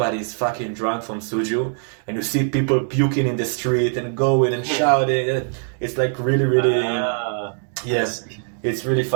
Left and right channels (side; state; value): left; silent; 64 dB below the other